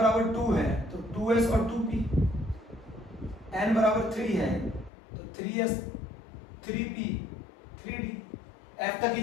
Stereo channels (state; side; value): drops out; right; at 4.9 s